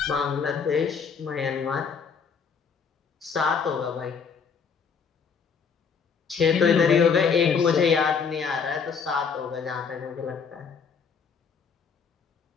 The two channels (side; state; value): right; quieter; 6.0 dB